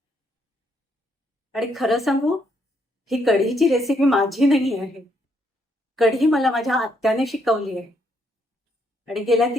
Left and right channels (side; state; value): both; normal; correlation 0.74